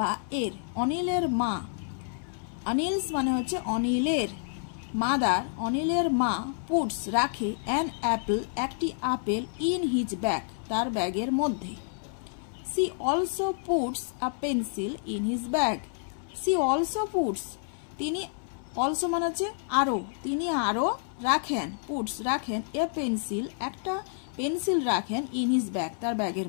এর। অনিলের মা, অনিলস মানে হচ্ছে অনিলের, মাদার অনিলের মা, পুটস রাখে, অ্যান অ্যাপল একটি আপেল, ইন হিজ ব্যাগ তার ব্যাগের মধ্যে। She also puts a pencil in his bag, she also puts তিনি, অলসো মানে হচ্ছে আরও, তিনি আরও রাখেন, পুটস রাখেন, এ পেন্সিল একটা পেন্সিল রাখেন, ইন হিজ ব্যাগ তার ব্যাগের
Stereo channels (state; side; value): silent; right; 59 dB below the other